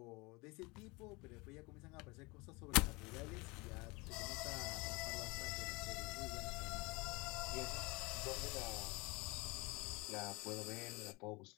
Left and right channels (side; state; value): right; quieter; 25.5 dB